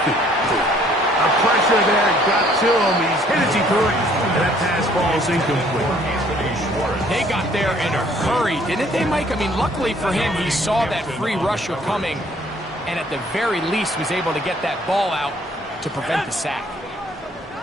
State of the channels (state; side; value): normal; both; correlation 0.61